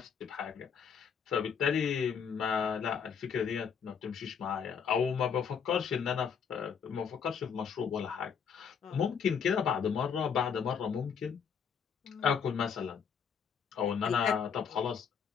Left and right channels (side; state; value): right; quieter; 6.9 dB